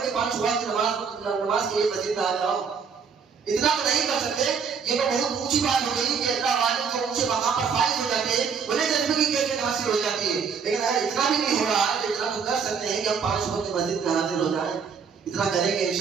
کہ 5 وقت نماز کے لیے مسجد میں آ جاؤ. اتنا تو نہیں کر سکتے. یہ تو بہت اونچی بات ہو گئی کہ اللہ والے جو اونچے مقام پر فائز ہو جاتے ہیں انہیں جذبے کی کیفیت حاصل ہو جاتی ہے. لیکن اگر اتنا بھی نہیں ہو رہا ہے تو اتنا تو کر سکتے ہیں کہ ہم 5 وقت مسجد میں حاضر ہو جائیں. اتنا کریں گے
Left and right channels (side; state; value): left; quieter; 6.2 dB